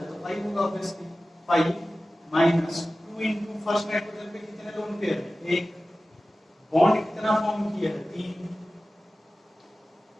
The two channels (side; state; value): both; normal; correlation 0.96